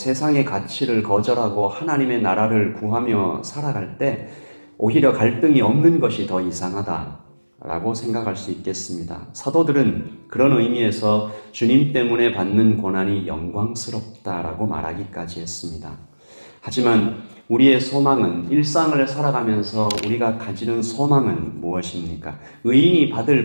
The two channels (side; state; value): both; inverted; correlation -1.00